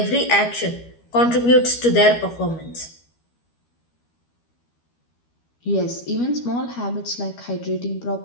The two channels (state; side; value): late; right; 12 ms